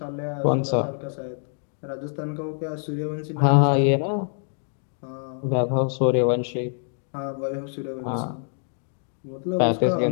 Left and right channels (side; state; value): right; silent; 61 dB below the other